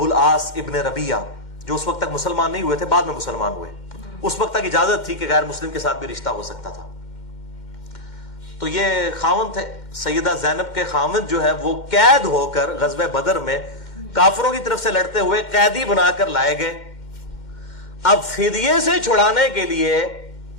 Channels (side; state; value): right; late; 2.1 ms